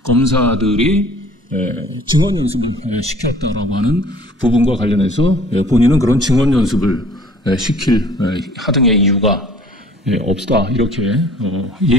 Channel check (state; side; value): normal; both; correlation 0.51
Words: 검사들이 증언 연습을 시켰다라고 하는 부분과 관련해서 본인은 그런 증언 연습을 시킬 하등의 이유가 없다, 이렇게